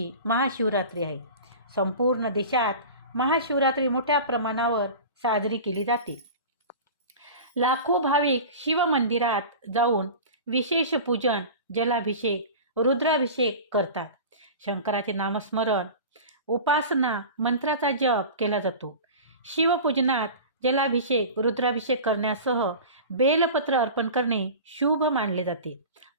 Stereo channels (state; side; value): inverted; both; correlation -0.34